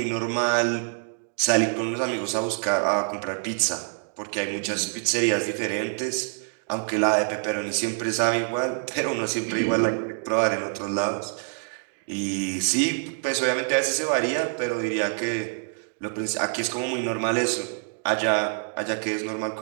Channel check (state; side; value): silent; left; digital silence